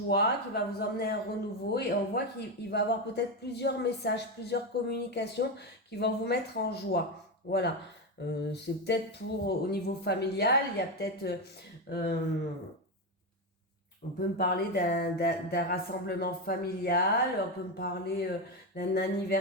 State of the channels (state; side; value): normal; both; correlation 0.12